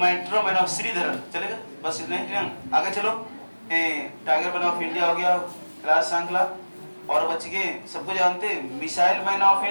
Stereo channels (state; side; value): inverted; both; correlation -1.00